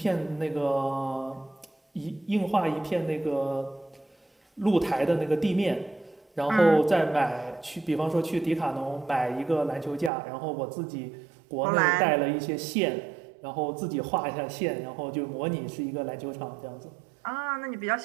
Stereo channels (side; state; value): left; drops out; at 10.1 s